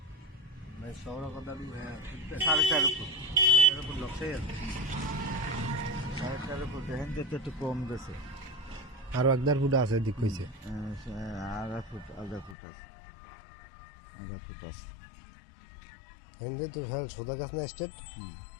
শহর কথা 4.5 ফুট 4.5 ফুট লক্ষ্যই আছে 4.5 ফুট হিন্দু তো একটু কম দিয়েছে আরো 1.5 ফুট আছে দিক কইছে আধা ফুট আছে আধা ফুট আছে হিন্দে তো হেল সোদা গাছ না স্টেট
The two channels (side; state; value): right; drops out; at 12.6 s